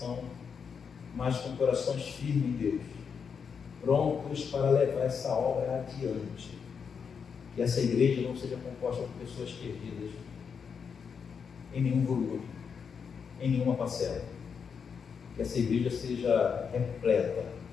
mas com corações firmes em Deus, prontos para levar essa obra adiante. Que essa igreja não seja composta por pessoas perdidas em nenhum volume, em nenhuma parcela. Que essa igreja seja repleta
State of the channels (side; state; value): right; quieter; 6.4 dB